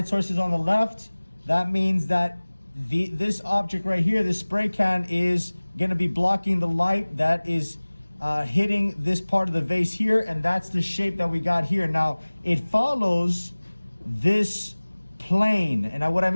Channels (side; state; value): both; inverted; correlation -1.00